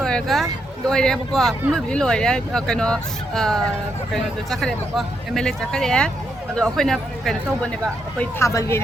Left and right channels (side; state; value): both; normal; correlation 0.79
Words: ka. Loy deh pokok. Mungkin di loy deh. Kano tu cakap deh pokok. MLA cakap deh. Aduh, aku ni kano tahu benda ba. Aku tabal ni.